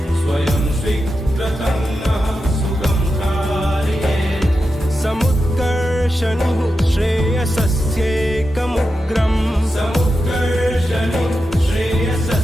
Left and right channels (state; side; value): normal; both; correlation 0.89